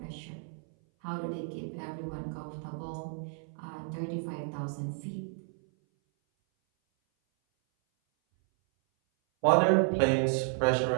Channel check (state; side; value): silent; left; 57 dB below the other